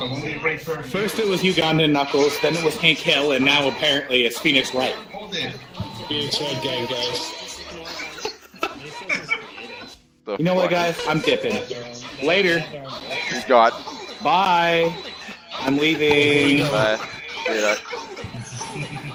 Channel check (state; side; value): identical; both; correlation 1.00